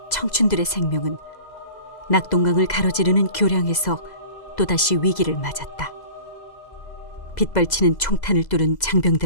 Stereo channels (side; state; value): right; late; 2.0 ms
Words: 청춘들의 생명은 낙동강을 가로지르는 교량에서 또다시 위기를 맞았다. 빗발치는 총탄을 뚫은